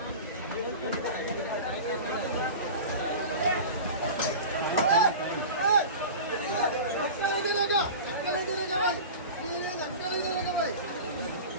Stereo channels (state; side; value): inverted; both; correlation -0.33